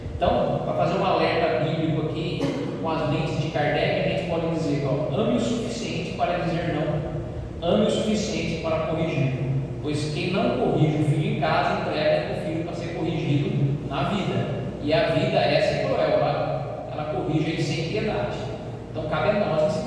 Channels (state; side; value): identical; both; correlation 1.00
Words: Então, para fazer um alerta bíblico aqui, com as lentes de Kardec, a gente pode dizer, ame o suficiente para dizer não, ame o suficiente para corrigir, pois quem não corrige o filho em casa, entrega o filho para ser corrigido na vida. E a vida, essa é cruel, ela corrige ele sem piedade. Então cabe a nós